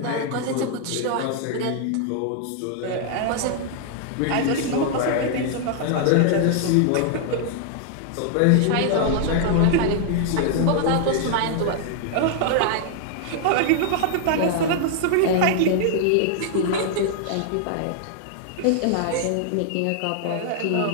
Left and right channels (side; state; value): both; different; correlation 0.00